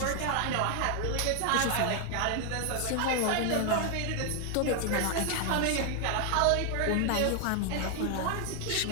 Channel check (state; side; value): different; both; correlation 0.00